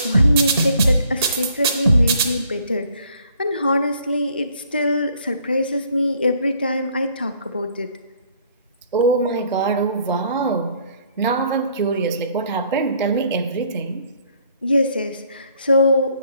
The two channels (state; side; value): inverted; both; correlation -0.62